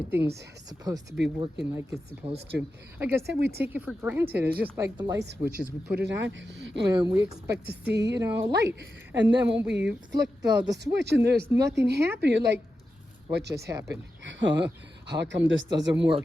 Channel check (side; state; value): both; normal; correlation 0.90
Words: supposed to be working like it's supposed to. Like I said, we take it for granted. It's just like the light switches. We put it on and we expect to see, you know, light. And then when we flick the switch and there's nothing happening, you're like, what just happened? How come this doesn't